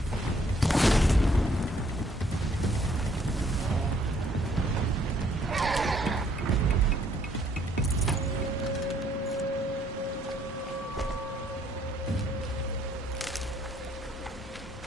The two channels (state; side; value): normal; both; correlation 0.66